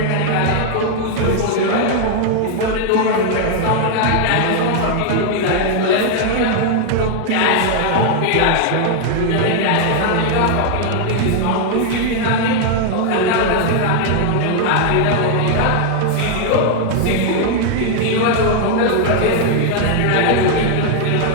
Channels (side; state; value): both; different; correlation 0.00